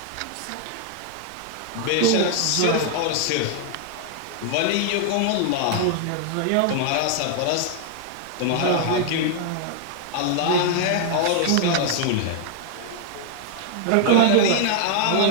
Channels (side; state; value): both; different; correlation 0.00